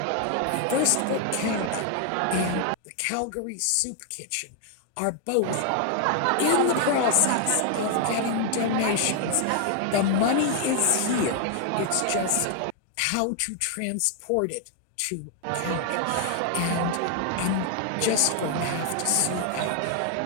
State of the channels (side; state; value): both; different; correlation 0.00